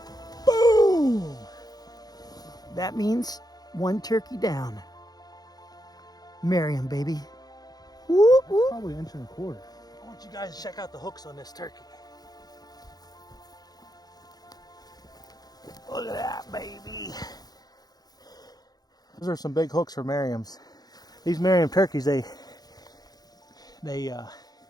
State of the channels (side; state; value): right; late; 0.19 ms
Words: Boom! That means one turkey down. Merriam, baby. Whoop, whoop. Probably an inch and a quarter. I want you guys to check out the hooks on this turkey. Look at that, baby. Those are some big hooks for Merriams. These Merriam turkeys, they